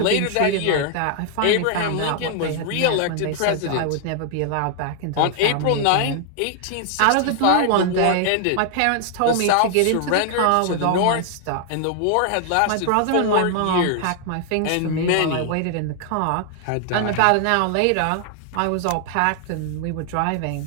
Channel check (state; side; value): different; both; correlation 0.00